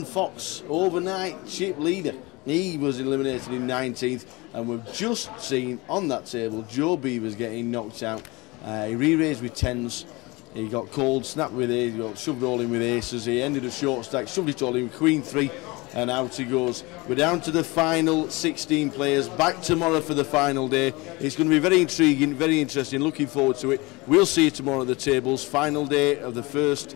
Fox overnight chip leader. He was eliminated in 19th, and we've just seen on that table Joe Beavers getting knocked out. He re-raised with 10s, he got called, snapped with aces, he got shoved all in with aces, he ended a short stack, shoved it all in with Queen 3, and out he goes. We're down to the final 16 players, back tomorrow for the final day. It's going to be very intriguing, very interesting, looking forward to it. We'll see you tomorrow at the tables, final day of the first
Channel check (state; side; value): quieter; right; 24.0 dB